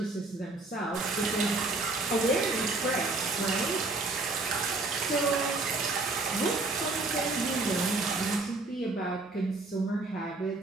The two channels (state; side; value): quieter; left; 3.3 dB